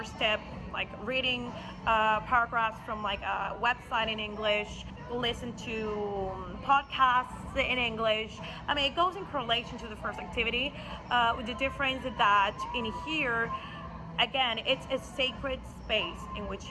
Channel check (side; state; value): both; identical; correlation 1.00